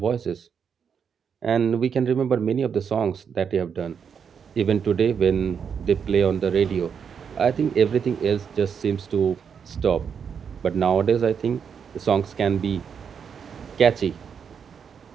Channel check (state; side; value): quieter; left; 7.0 dB